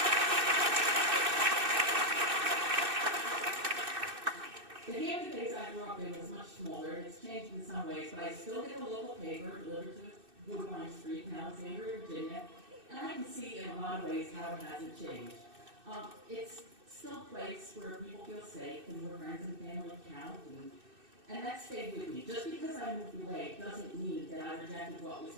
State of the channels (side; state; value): left; late; 2.6 ms